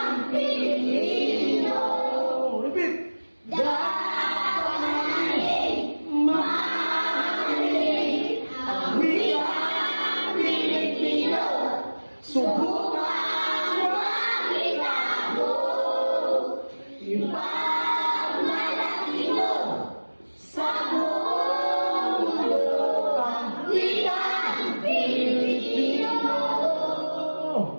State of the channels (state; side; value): inverted; both; correlation -1.00